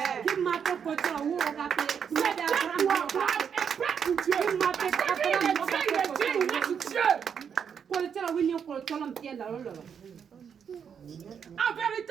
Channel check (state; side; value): quieter; left; 7.4 dB